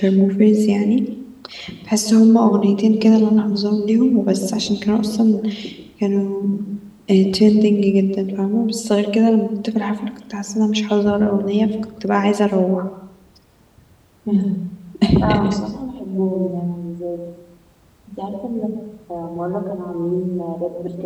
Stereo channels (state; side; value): identical; both; correlation 1.00